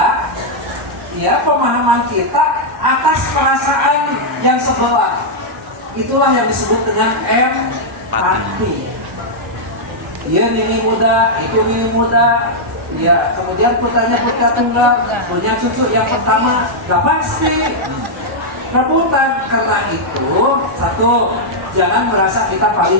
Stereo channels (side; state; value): both; normal; correlation -0.05